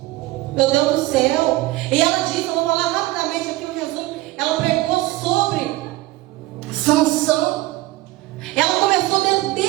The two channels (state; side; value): quieter; left; 18.3 dB